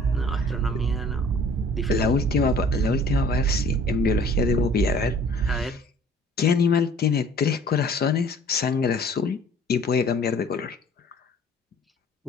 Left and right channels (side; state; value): both; normal; correlation 0.51